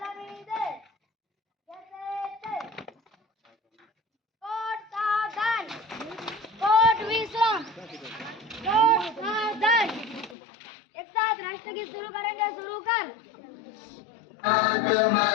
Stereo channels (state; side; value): drops out; right; at 10.4 s